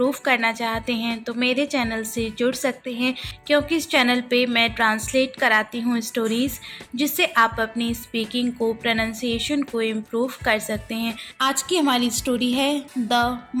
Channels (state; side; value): identical; both; correlation 1.00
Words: करना चाहते हैं तो मेरे चैनल से जुड़ सकते हैं, क्योंकि इस चैनल पे मैं ट्रांसलेट कराती हूँ स्टोरीज़, जिससे आप अपनी स्पीकिंग को, प्रोनाउंसिएशन को इम्प्रूव कर सकते हैं। आज की हमारी स्टोरी है द